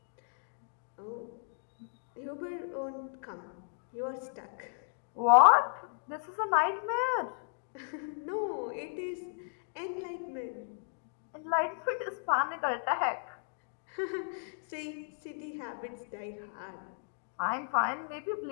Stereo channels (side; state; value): right; silent; digital silence